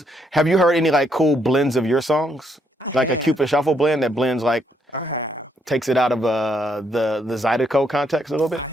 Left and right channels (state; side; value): normal; both; correlation 0.73